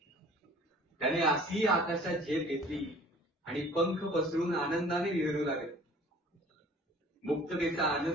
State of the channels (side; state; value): both; normal; correlation 0.50